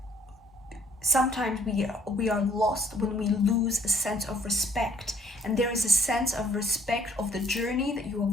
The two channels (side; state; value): both; normal; correlation 0.61